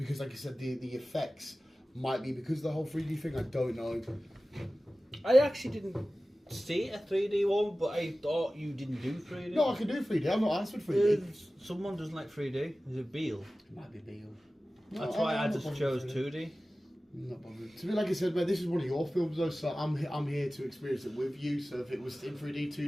like I said, the effects might be because of the whole 3D thing. I don't know. I actually didn't see a 3D one, but I thought you didn't do 3D. No, I can do 3D. I'm not asked for 3D. Someone doesn't like 3D. Is it Beale? It might be Beale. That's why I I'm just not chose bothered with 2D. Not bothered. To me, like I said, man, this is one of your films though, so I'm here to experience it with you. So if it was in 3D,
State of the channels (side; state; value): both; normal; correlation 0.96